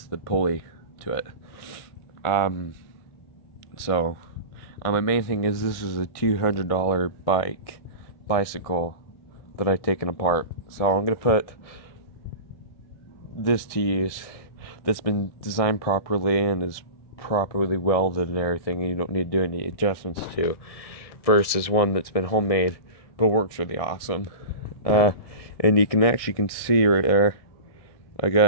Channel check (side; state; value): right; late; 1.6 ms